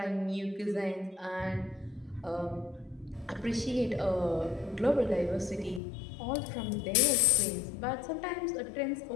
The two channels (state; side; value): drops out; right; at 5.8 s